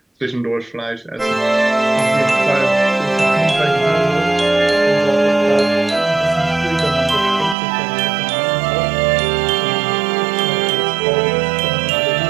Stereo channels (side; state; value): left; drops out; at 7.6 s